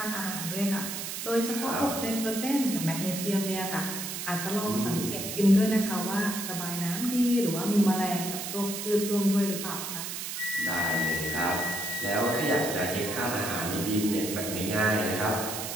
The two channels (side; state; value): right; noise; hiss, 5 dB below the sound